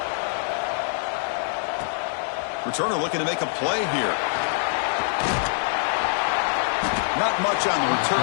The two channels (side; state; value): right; silent; digital silence